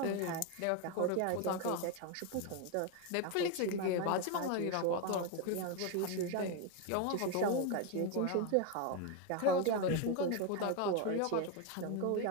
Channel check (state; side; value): different; both; correlation 0.02